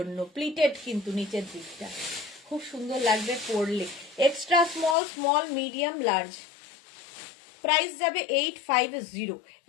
প্লিটেড, কিন্তু নিচের দিকটা খুব সুন্দর লাগবে পরলে। Extra small, small medium large. Price যাবে 850,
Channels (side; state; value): right; drops out; at 5.0 s